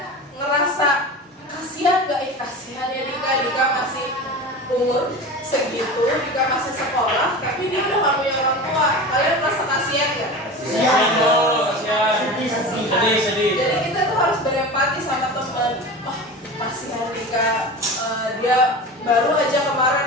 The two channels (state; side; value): normal; both; correlation 0.31